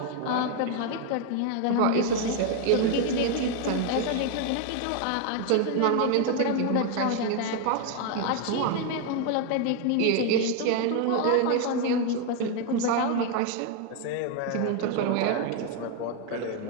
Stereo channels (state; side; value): different; both; correlation 0.01